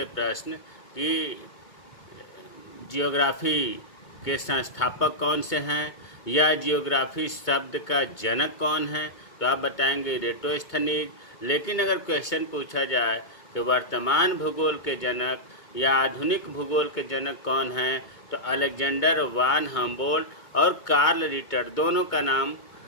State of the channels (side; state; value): right; late; 2.2 ms